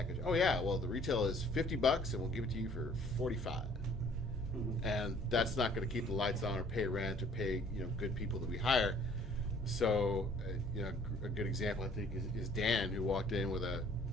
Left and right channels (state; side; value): normal; both; correlation 0.57